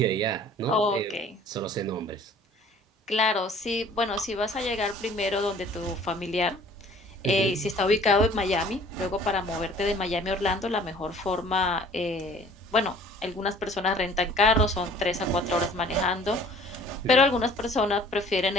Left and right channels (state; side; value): normal; both; correlation 0.52